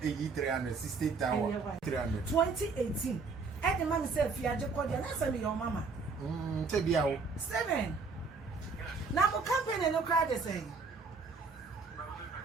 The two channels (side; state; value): left; quieter; 4.6 dB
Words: E300, 60,000, 300. 2018. And the man said, "If you are just calling, answer me your mama." 7. Now, what company no crowd is saying?